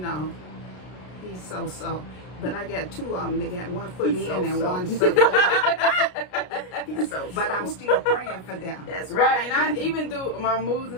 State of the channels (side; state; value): right; late; 33 ms